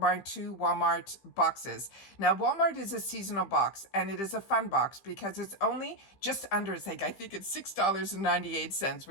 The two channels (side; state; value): right; late; 15 ms